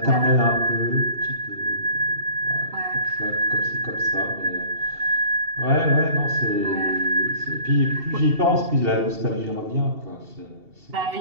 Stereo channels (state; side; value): late; left; 2.7 ms